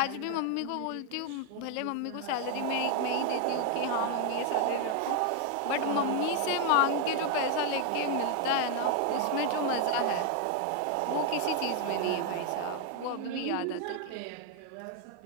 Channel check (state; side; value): different; both; correlation 0.01